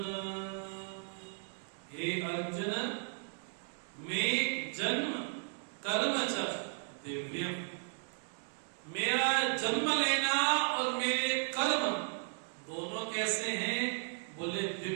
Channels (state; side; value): silent; left; 54 dB below the other